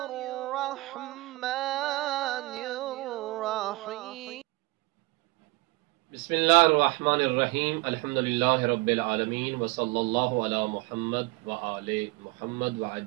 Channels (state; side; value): quieter; left; 23.2 dB